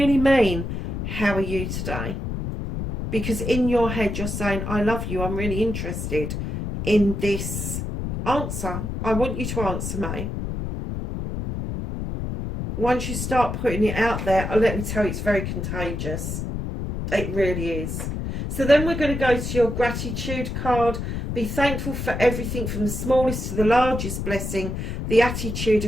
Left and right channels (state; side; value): noise; left; rumble, 4 dB below the sound